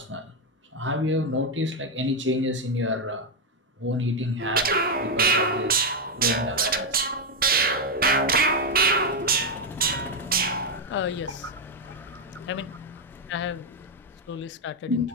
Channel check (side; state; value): both; normal; correlation 0.04